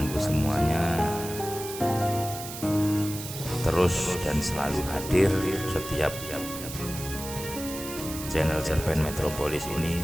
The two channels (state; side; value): noise; right; hiss, 10 dB below the sound